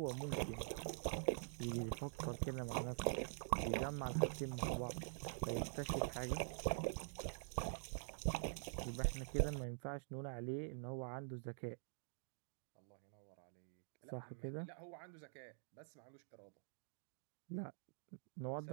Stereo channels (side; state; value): left; silent; digital silence